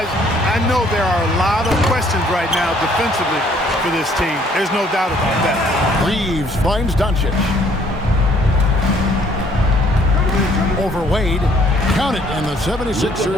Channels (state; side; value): normal; both; correlation 0.62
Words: I know there are a lot of questions right now defensively for this team. There's no doubt about that. Reeves finds Doncic. Over Wade. Count it, and the